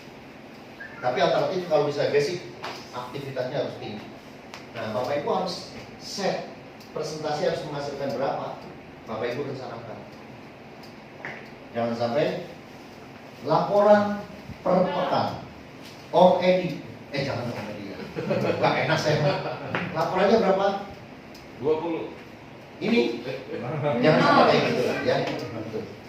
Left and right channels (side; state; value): both; identical; correlation 1.00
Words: Tapi alternatif kalau bisa basic, aktivitasnya harus tinggi. Nah, Bapak Ibu harus set presentasi harus menghasilkan berapa. Bapak Ibu rencanakan. Jangan sampai laporan per pekan. Om Edi, jangan Om Edi ya. Gak enak saya. Laporannya berapa? 20. Ini jangan sampai kayak gitu ya.